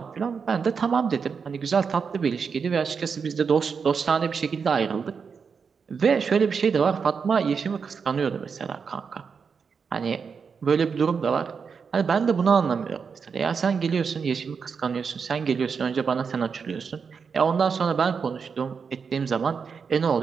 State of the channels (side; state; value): left; quieter; 5.9 dB